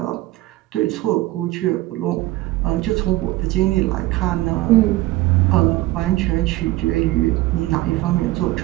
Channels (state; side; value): quieter; left; 17.8 dB